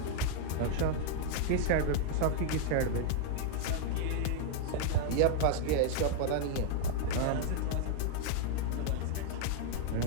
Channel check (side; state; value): both; different; correlation 0.00